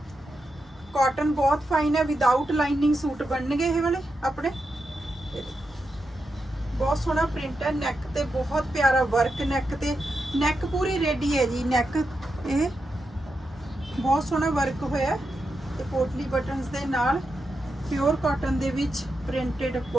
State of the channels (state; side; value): normal; both; correlation 0.87